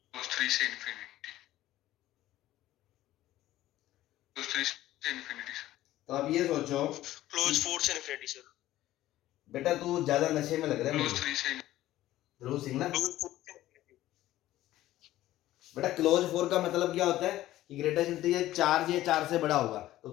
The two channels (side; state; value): right; quieter; 14.8 dB